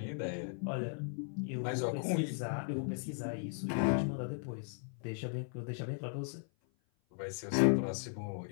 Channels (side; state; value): right; silent; 53 dB below the other